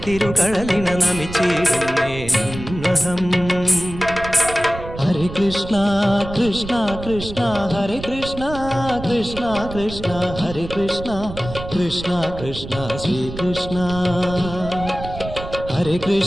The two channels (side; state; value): right; noise; rumble, 11 dB below the sound